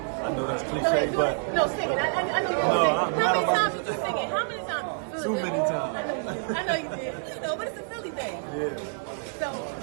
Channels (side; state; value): left; silent; digital silence